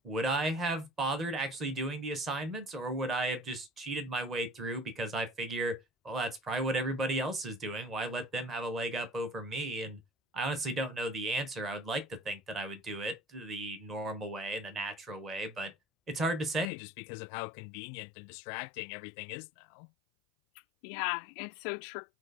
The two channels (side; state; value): right; drops out; at 16.7 s